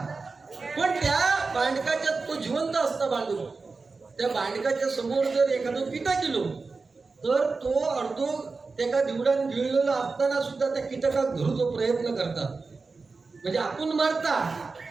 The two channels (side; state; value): left; quieter; 4.1 dB